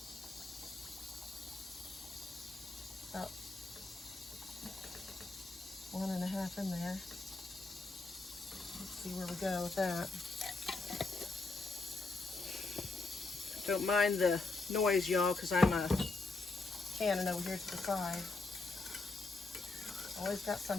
about 1.5 in there. Let's see where we go with that. Don't mind the noise, y'all, because I'm canning over here to the side. Always got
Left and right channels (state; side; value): quieter; right; 3.5 dB